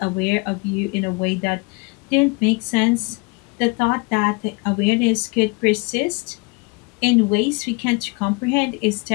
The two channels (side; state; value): right; quieter; 30.3 dB